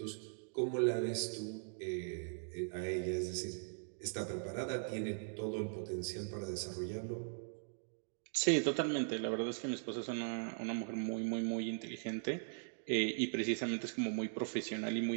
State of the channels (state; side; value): silent; left; digital silence